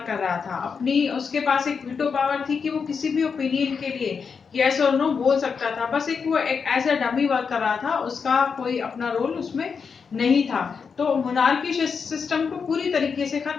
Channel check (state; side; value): quieter; right; 5.8 dB